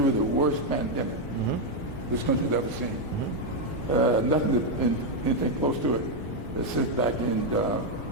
the worst pandemic this country's ever seen. Anything close to it since back in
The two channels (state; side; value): normal; both; correlation 0.02